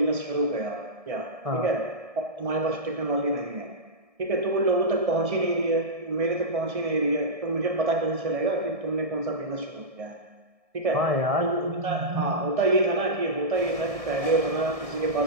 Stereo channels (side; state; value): left; late; 1.7 ms